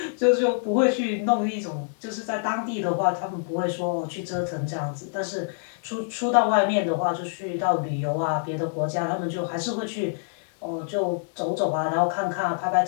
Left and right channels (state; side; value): silent; right; digital silence